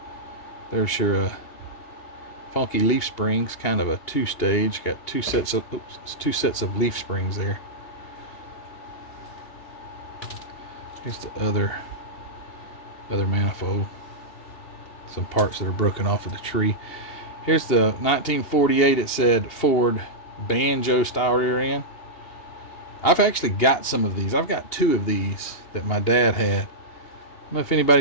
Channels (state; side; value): late; right; 2.8 ms